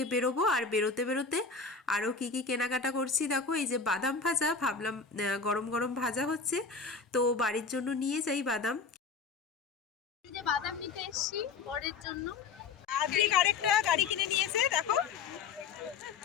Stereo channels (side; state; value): right; quieter; 5.0 dB